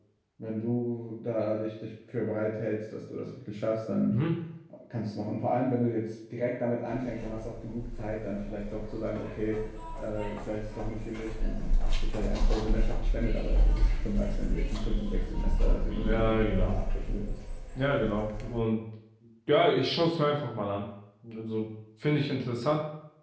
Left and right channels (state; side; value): identical; both; correlation 1.00